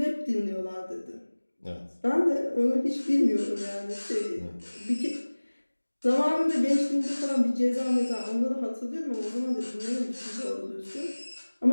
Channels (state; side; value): inverted; both; correlation -1.00